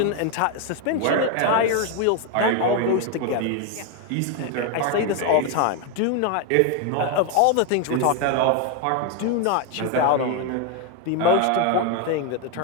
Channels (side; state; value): both; different; correlation 0.01